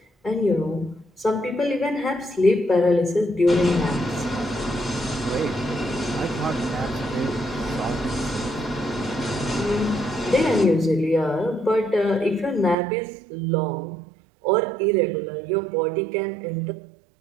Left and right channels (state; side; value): drops out; left; at 12.8 s